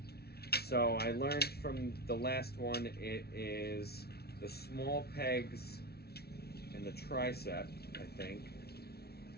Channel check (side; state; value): right; late; 0.46 ms